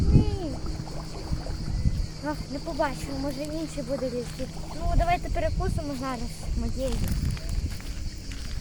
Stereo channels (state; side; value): identical; both; correlation 1.00